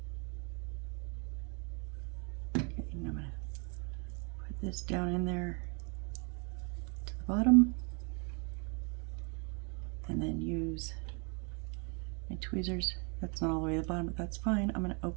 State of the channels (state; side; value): quieter; left; 35.5 dB